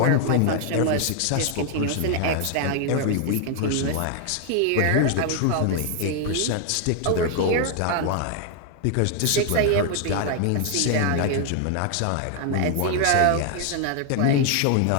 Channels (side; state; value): both; different; correlation 0.00